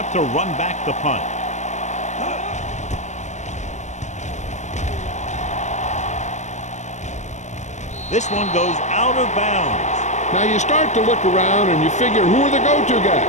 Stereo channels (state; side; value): late; right; 0.34 ms